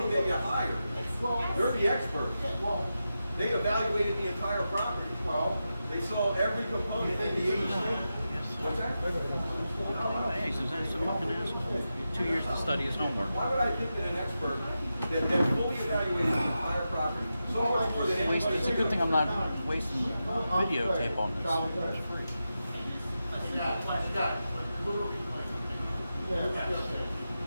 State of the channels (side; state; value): both; inverted; correlation -0.90